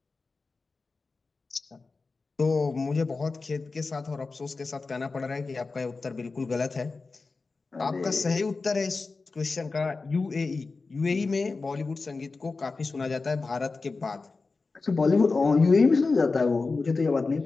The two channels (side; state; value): right; quieter; 4.0 dB